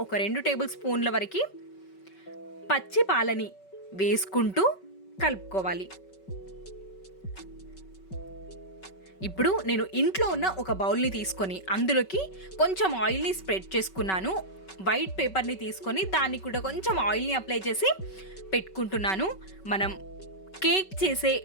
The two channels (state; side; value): late; right; 5.3 ms